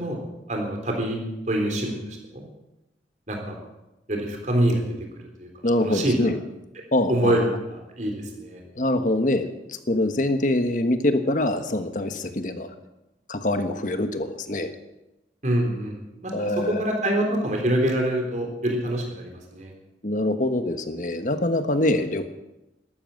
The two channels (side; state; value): both; normal; correlation 0.53